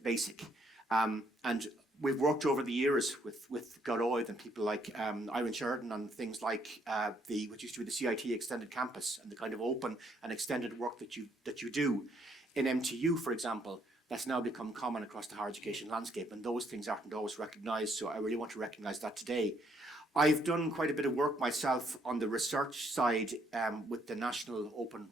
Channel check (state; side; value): normal; both; correlation 0.70